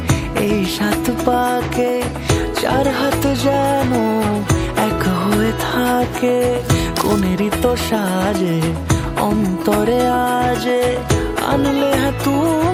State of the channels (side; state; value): both; identical; correlation 1.00